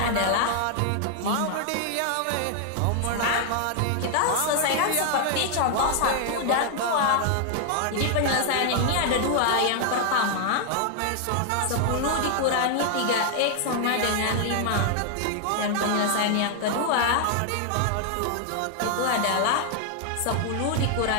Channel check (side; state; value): both; different; correlation 0.00